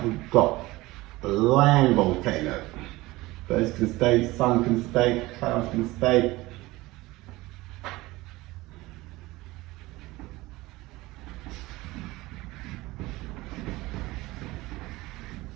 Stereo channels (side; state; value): left; quieter; 19.9 dB